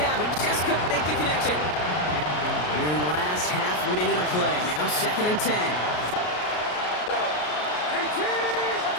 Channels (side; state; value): right; late; 33 ms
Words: but just couldn't make the connection. Here in the last half minute of play. Now 2nd and 10.